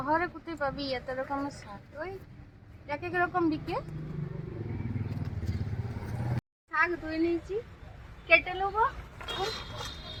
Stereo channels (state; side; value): identical; both; correlation 1.00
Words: কোথায় পাবি এত রকমের শাক? ওই এক এক রকম বিকে। শাক ধুয়ে নিয়েছি, কেটে নেবো।